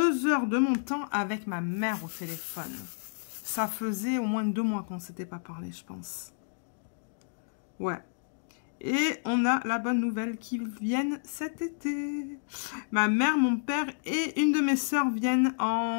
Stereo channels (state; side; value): silent; right; digital silence